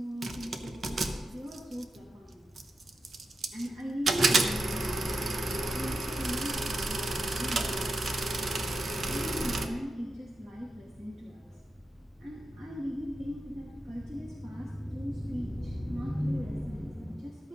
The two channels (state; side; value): normal; both; correlation 0.89